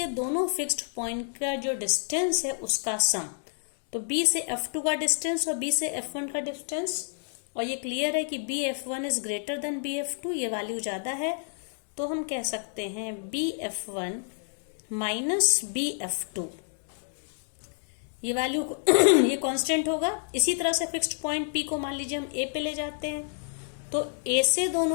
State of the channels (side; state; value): right; silent; digital silence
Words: दोनों फिक्स्ड पॉइंट का जो डिस्टेंस है उसका सम, तो B से F2 का डिस्टेंस और B से F1 का डिस्टेंस, और ये क्लियर है कि BF1 is greater than BF2, ये वैल्यू ज्यादा है, तो हम कह सकते हैं BF1 माइनस BF2 ये वैल्यू ये कांस्टेंट होगा। इसी तरह से फिक्स्ड पॉइंट P को मान लीजिए हम A पे ले जाते हैं, तो A से